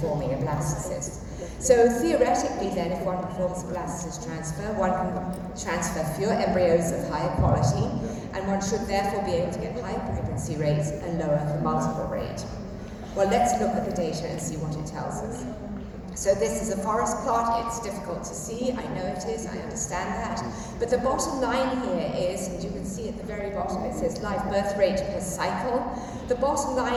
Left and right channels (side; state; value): both; identical; correlation 1.00